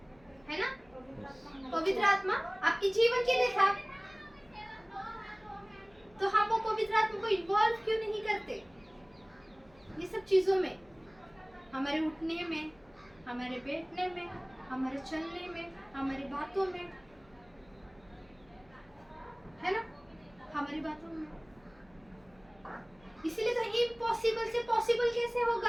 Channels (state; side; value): noise; left; hum, 29 dB below the sound